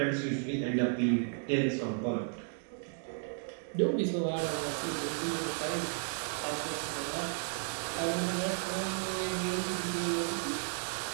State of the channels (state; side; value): silent; left; 55 dB below the other